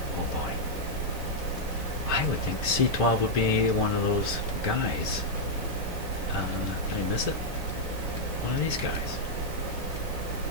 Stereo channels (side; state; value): right; late; 1.7 ms